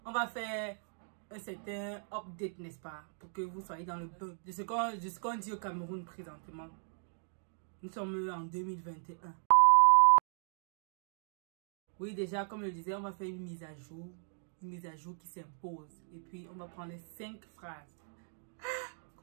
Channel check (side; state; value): left; silent; 54 dB below the other